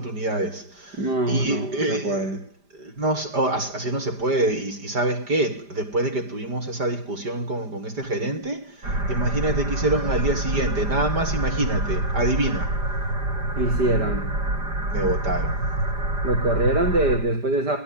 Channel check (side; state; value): left; late; 5.0 ms